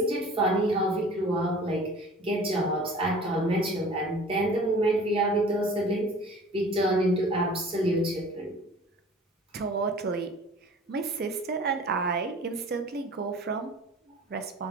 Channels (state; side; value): normal; both; correlation 0.45